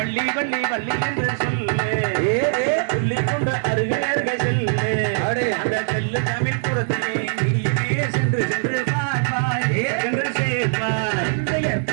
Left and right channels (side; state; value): left; silent; digital silence